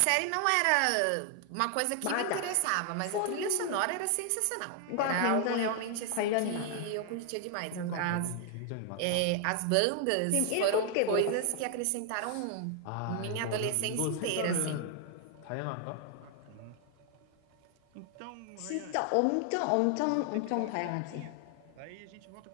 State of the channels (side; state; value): both; different; correlation 0.00